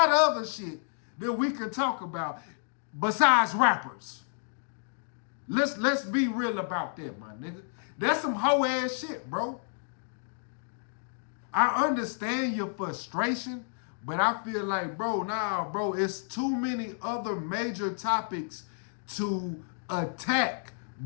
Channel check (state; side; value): silent; right; digital silence